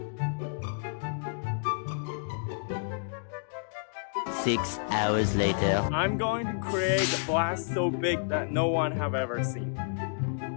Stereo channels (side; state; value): right; silent; digital silence